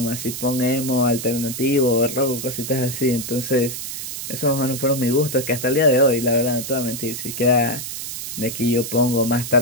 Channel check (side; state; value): right; noise; hiss, 7 dB below the sound